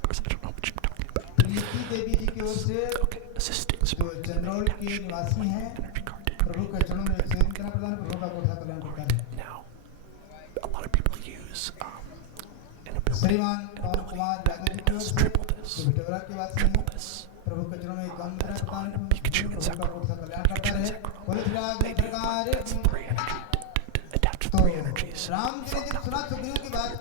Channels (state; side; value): different; both; correlation 0.01